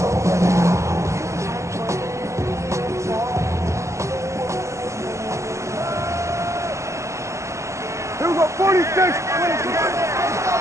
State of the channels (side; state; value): left; late; 0.14 ms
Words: Here we go, 46.